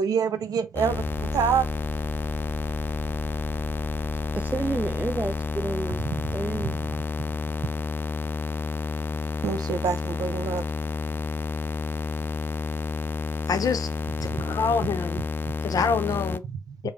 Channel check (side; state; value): both; normal; correlation 0.72